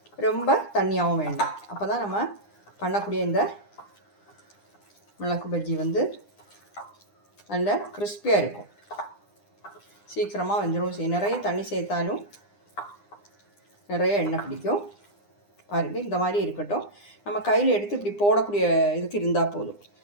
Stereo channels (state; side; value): late; right; 9.8 ms